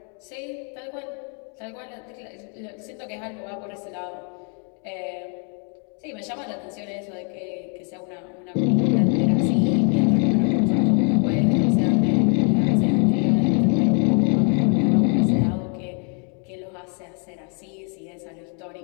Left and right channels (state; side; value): quieter; right; 39.9 dB